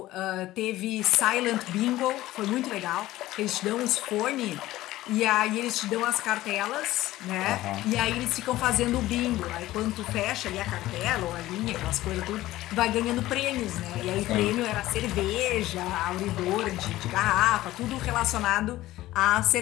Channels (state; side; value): quieter; right; 16.1 dB